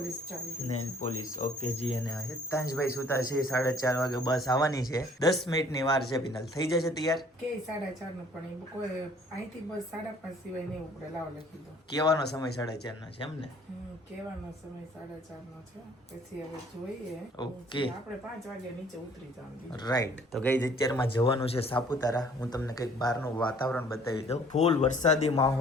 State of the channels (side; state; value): both; normal; correlation 0.56